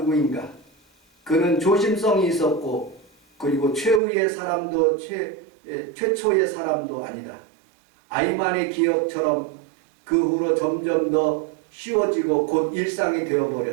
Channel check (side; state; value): left; drops out; at 4.0 s